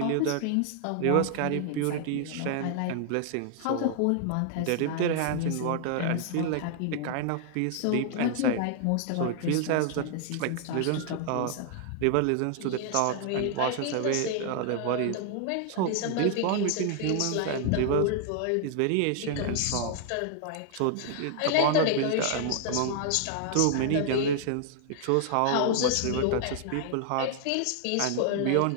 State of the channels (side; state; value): both; different; correlation 0.00